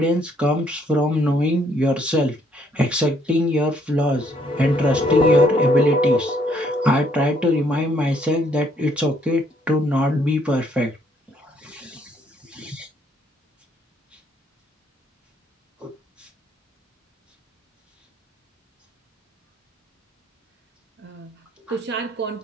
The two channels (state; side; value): normal; both; correlation 0.68